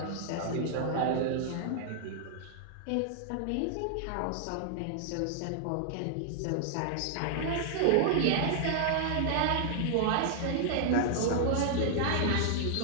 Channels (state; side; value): different; both; correlation -0.01